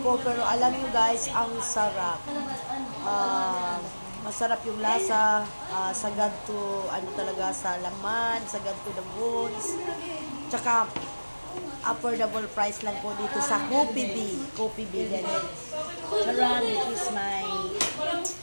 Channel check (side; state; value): both; inverted; correlation -1.00